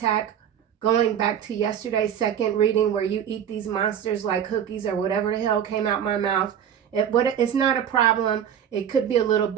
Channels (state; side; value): quieter; left; 9.0 dB